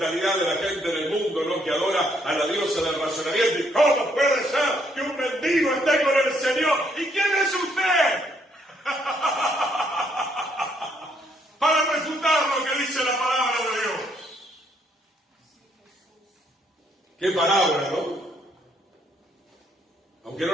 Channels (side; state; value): both; normal; correlation 0.70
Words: de la gente del mundo, ¿no? Que adora a la diosa del razonamiento. ¿Y cómo puede ser que un mendigo esté con el Señor? ¿Y quién es usted? Para refutar lo que dice la palabra de Dios. ¿Qué palabra, no? Aunque no